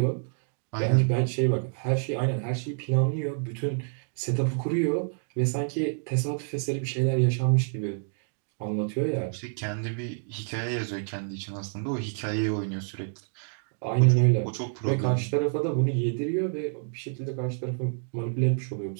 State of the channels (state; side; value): silent; left; digital silence